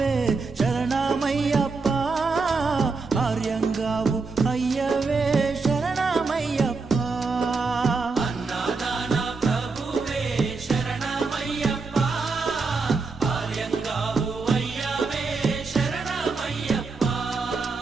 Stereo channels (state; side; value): quieter; left; 4.2 dB